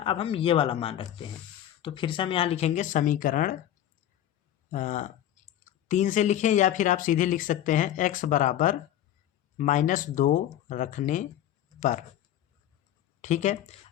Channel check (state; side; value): quieter; right; 11.7 dB